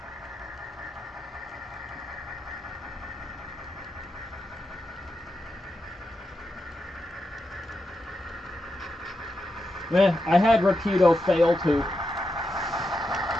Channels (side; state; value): both; normal; correlation 0.86